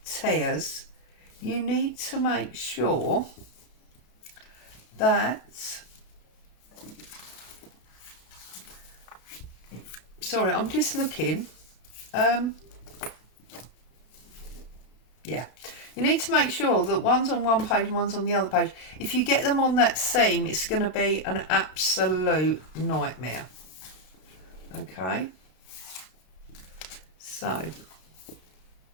tears, you need to make sure that, sorry, I'm just looking, yeah, you need to make sure that one's on one page and one's on the other page. If you get them on that seam, it's going to be an absolute nightmare. Okay, so,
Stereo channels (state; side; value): late; right; 33 ms